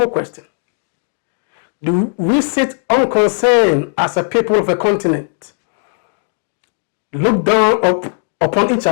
question. Do we sit unconcerned as a people of a continent, look down upon each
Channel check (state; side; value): silent; right; digital silence